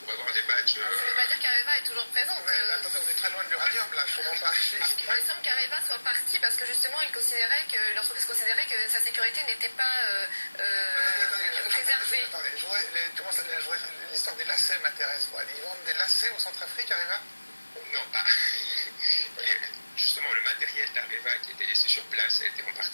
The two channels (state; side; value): inverted; both; correlation -1.00